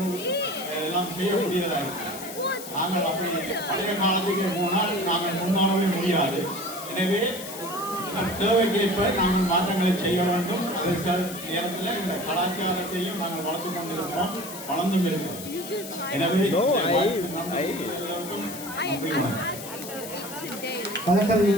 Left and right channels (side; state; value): left; noise; hiss, 11 dB below the sound